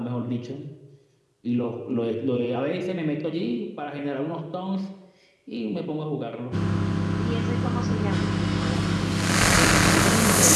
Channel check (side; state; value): both; identical; correlation 1.00